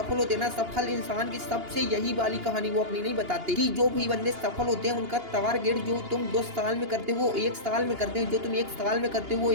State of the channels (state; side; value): late; left; 2.8 ms